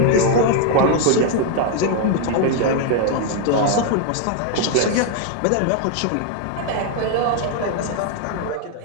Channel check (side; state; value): both; different; correlation 0.00